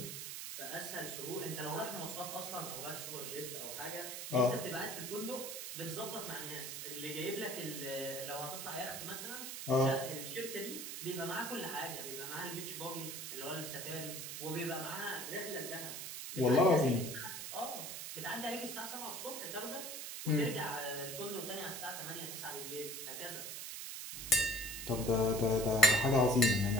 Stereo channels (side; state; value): right; noise; hiss, 6 dB below the sound